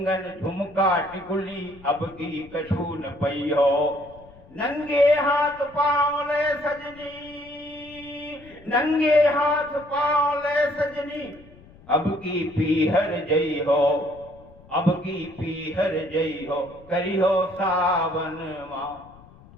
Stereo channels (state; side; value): noise; left; rumble, 23 dB below the sound